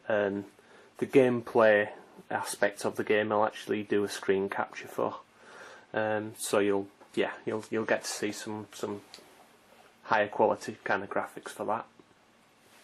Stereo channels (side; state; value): both; identical; correlation 1.00